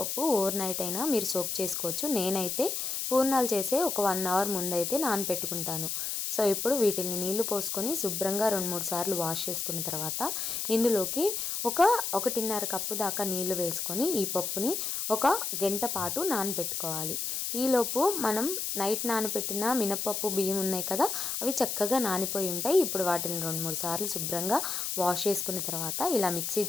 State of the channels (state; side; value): noise; left; hiss, 2 dB below the sound